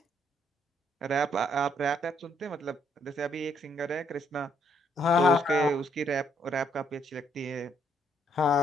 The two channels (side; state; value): both; normal; correlation 0.70